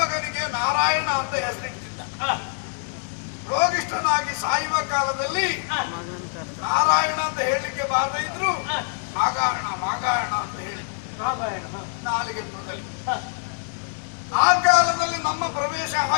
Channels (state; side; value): silent; right; digital silence